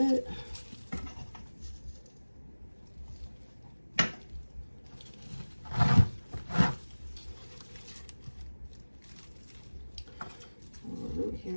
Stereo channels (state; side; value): inverted; both; correlation -1.00